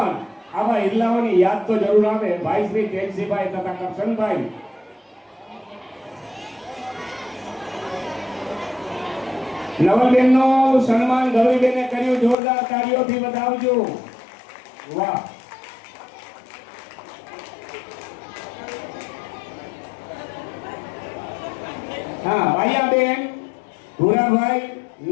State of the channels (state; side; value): drops out; right; at 12.4 s